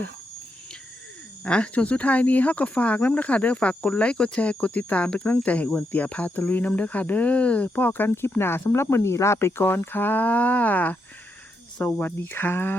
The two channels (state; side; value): normal; both; correlation 0.82